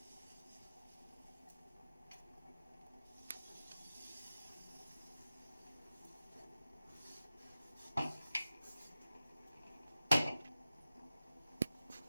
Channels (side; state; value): both; inverted; correlation -0.94